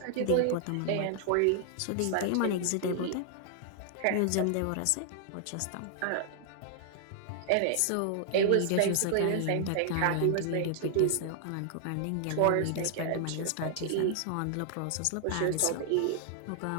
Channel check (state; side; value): different; both; correlation -0.01